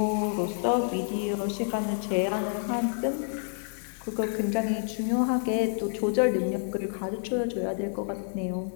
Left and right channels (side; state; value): right; silent; 59 dB below the other